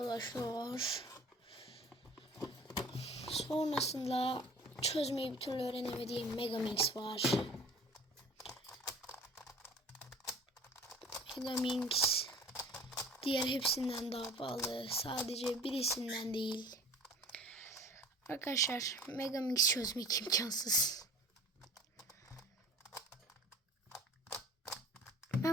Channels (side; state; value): both; normal; correlation 0.44